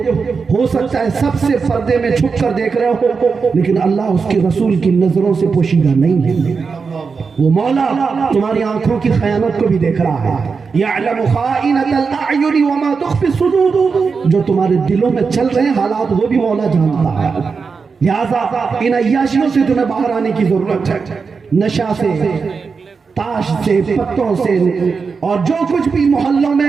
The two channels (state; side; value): quieter; left; 5.1 dB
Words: ہو سکتا ہے سب سے پردے میں چھپ کر دیکھ رہے ہو، لیکن اللہ اس کے رسول کی نظروں سے پوشیدہ نہیں ہے۔ وہ مولا تمہاری آنکھوں کی خیانت کو بھی دیکھ رہا ہے۔ یعلم خائنۃ الاعین وما تخفی الصدور، جو تمہارے دلوں میں چل رہے ہیں حالات وہ بھی مولا جانتا ہے۔ لہذا ان عیاشیوں سے تمہیں باہر آنے کی ضرورت ہے، نشہ سے، تاش سے، پتوں سے، اور جو کچھ بھی محلوں